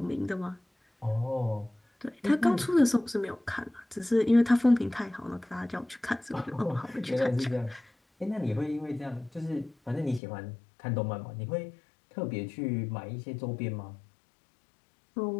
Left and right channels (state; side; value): drops out; right; at 10.2 s